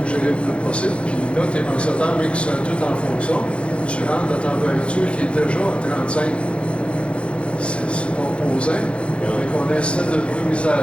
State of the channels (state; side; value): late; right; 0.059 ms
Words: le plus possible. Puis là, tes ventilateurs, mais qui sont tout en fonction, tu rentres la température qui est déjà à 35. C'est composant. Donc, on a un système de